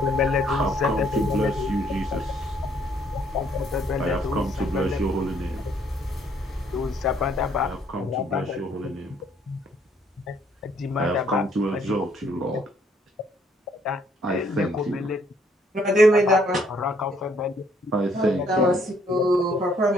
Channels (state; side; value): normal; both; correlation 0.66